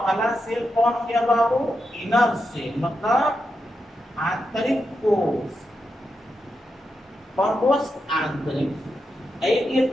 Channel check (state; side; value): normal; both; correlation 0.86